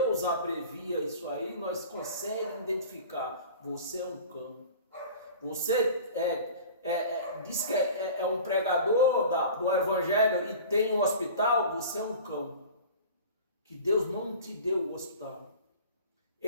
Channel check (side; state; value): both; inverted; correlation -0.40